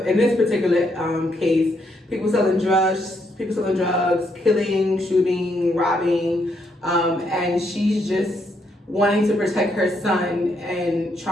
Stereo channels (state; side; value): normal; both; correlation 0.76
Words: in this particular case, people selling drugs, killing, shooting, robbing, and she's just wanting to protect her son and